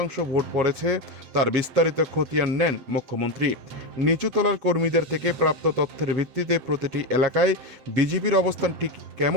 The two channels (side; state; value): left; late; 7.8 ms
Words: ভোট পড়েছে তার বিস্তারিত খতিয়ান নেন মুখ্যমন্ত্রী। নিচুতলার কর্মীদের থেকে প্রাপ্ত তথ্যের ভিত্তিতে প্রতিটি এলাকায় বিজেপির অবস্থান ঠিক